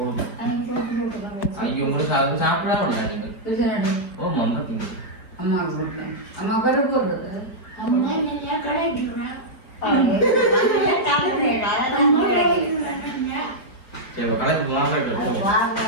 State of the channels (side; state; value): right; late; 4.4 ms